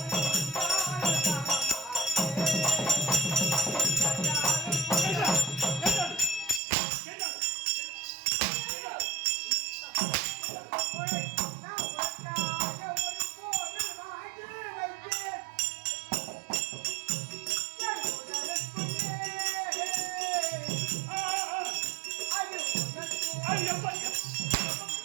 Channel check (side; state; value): left; drops out; at 6.6 s